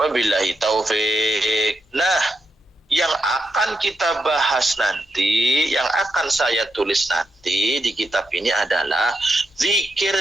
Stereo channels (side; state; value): both; normal; correlation 0.84